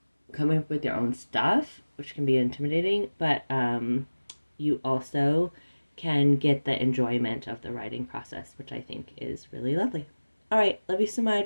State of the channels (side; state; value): both; inverted; correlation -1.00